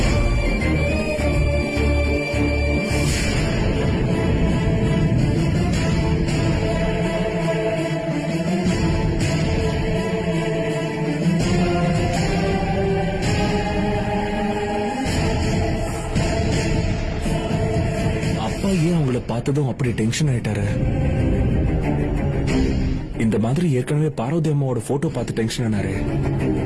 ஏன் அவங்கள பார்த்ததும் அப்படி டென்ஷன் ஆயிட்டாரு? இந்த மாதிரி ஏற்கனவே பார்வதி அம்மாவோட போட்டோ பார்த்து டென்ஷன் ஆனாரு.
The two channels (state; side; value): identical; both; correlation 1.00